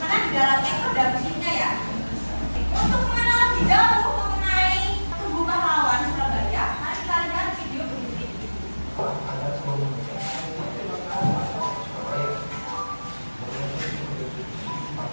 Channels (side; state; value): both; inverted; correlation -1.00